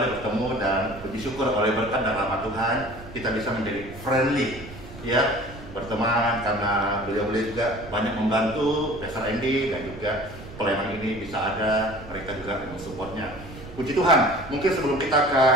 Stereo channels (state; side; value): noise; right; rumble, 15 dB below the sound